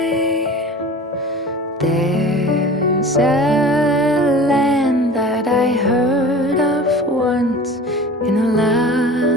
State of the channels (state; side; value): normal; both; correlation 0.39